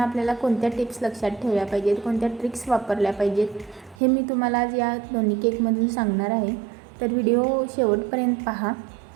आपल्याला कोणत्या टिप्स लक्षात ठेवल्या पाहिजेत, कोणत्या ट्रिक्स वापरल्या पाहिजेत, हे मी तुम्हाला आज या दोन्ही केकमधून सांगणार आहे. तर व्हिडिओ शेवटपर्यंत पहा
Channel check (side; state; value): left; drops out; at 4.0 s